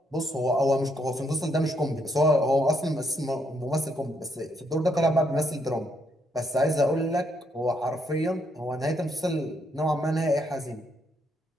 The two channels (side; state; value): both; normal; correlation 0.74